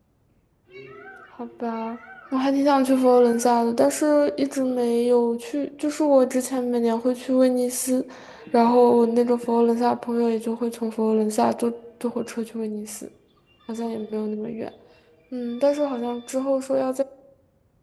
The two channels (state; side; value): identical; both; correlation 1.00